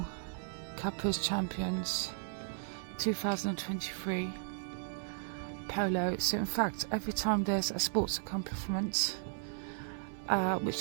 Kappa's Champions, 2023, Polo. So in fact, every time there's a sports accomplishment which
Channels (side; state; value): left; silent; 54 dB below the other